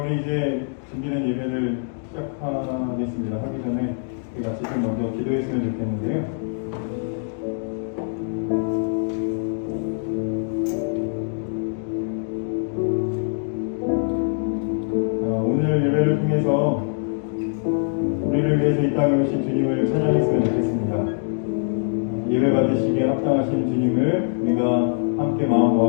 이제 준비된 예배를 시작하겠습니다. 하기 전에 우리 같이 좀 먼저 기도했으면 좋겠는데요. 오늘 예배를 통해서 우리를 위해서 이 땅에 오신 주님을 찬양했으면 좋겠습니다. 예배 받으시기에 합당하신 주님을 우리가 함께 마음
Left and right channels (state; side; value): silent; right; digital silence